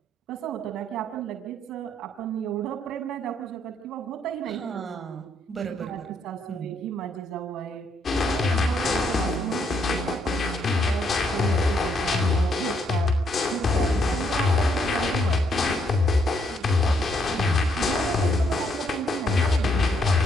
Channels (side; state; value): both; normal; correlation 0.73